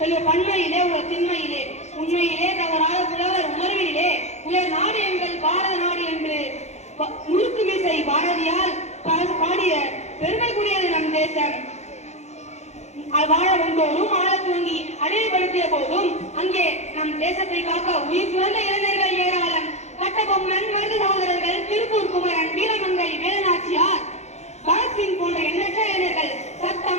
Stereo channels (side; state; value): right; late; 0.33 ms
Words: பன்மையிலே உள்ள திண்மையிலே உண்மையிலே தவறாத புலவர் உணர்விலே உயர் நாடு எங்கள் பாரத நாடு என்று முழுக்கு மிசை பாரதியால் பாடிய பெருமைக்குரியது நம் தேசம். வாழ வந்தோரும் ஆழ துவங்கி அடையப்படுத்திய போதும் அங்கே நம் தேசத்தை காக்க உயிர் துறந்த இளைஞர்கள் ஏராளம். கட்டபொம்மன், மருது சகோதரர்கள், திருப்பூர் குமரன், வீரமங்கை வேலுநாச்சியார், பகத்சிங் போன்ற எண்ணற்ற இளைஞர்கள்